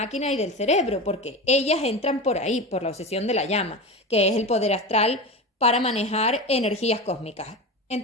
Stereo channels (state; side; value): normal; both; correlation 0.25